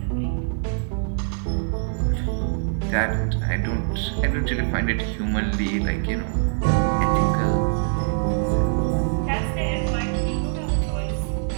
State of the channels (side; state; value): left; silent; digital silence